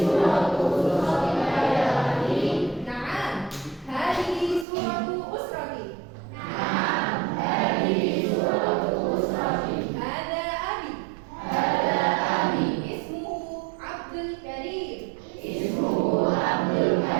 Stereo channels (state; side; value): drops out; left; at 4.7 s